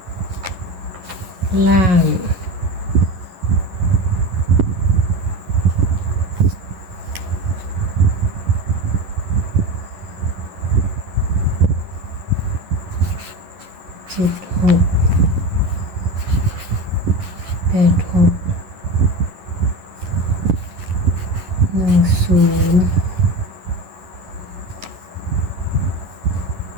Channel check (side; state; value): left; late; 11 ms